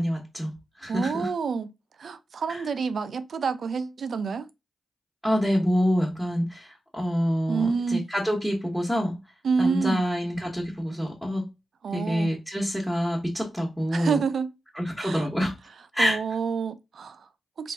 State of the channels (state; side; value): normal; both; correlation 0.92